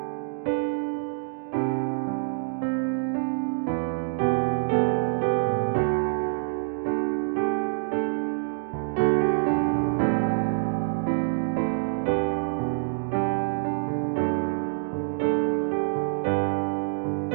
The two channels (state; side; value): silent; left; digital silence